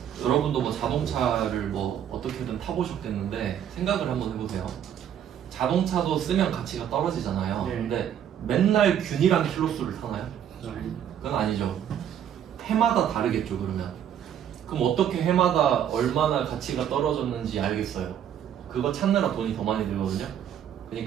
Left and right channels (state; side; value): quieter; left; 9.6 dB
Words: 여러분도 뭐 자동차를 뭐 어떻게든 타보셨겠는데 생각을 한번 해보세요. 자동차도 쓰면 가치가 떨어지잖아요. 네. 근데 맨날 균일한 킬로수를 타나요? 그건 아니죠. 해마다 다르겠죠. 그럼 어떻게 해마다 얼마나 가치가 떨어졌는지 알겠어요. 그거 찾느라 돈이 더 많이 들거든요.